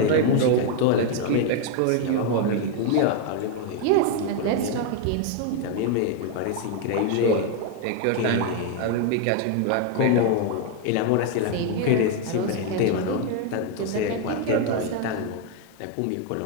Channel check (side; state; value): both; different; correlation 0.00